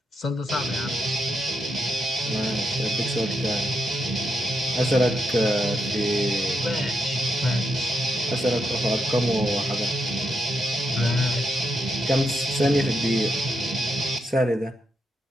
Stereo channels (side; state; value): both; normal; correlation 0.83